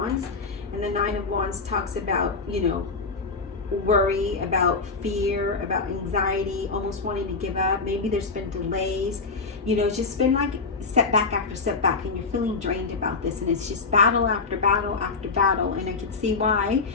and the Nine of Wands talks about, you know, worry, about fear, about anxiety, almost wanting to give up. Maybe there's been delays. You know, it's just been like setback after setback, and you're feeling drained about this, and it's just battle after battle after battle. And I can see why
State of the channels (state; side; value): quieter; right; 4.3 dB